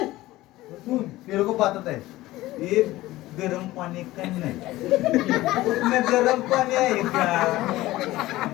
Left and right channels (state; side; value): quieter; right; 17.3 dB